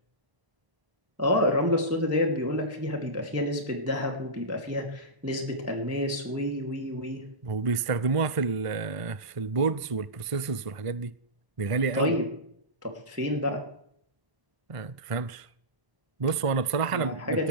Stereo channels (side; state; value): left; late; 1.5 ms